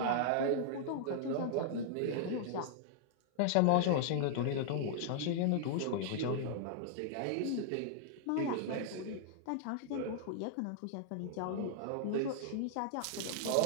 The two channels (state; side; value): different; both; correlation -0.01